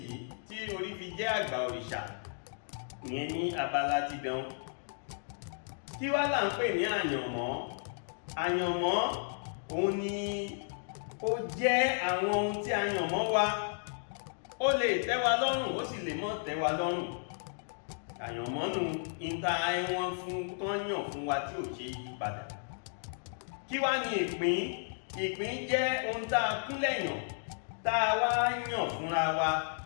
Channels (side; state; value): right; silent; digital silence